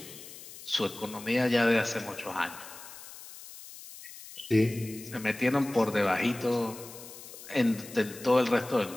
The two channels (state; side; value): noise; left; hiss, 15 dB below the sound